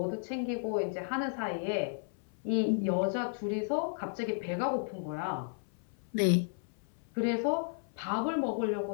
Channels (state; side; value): silent; right; 55 dB below the other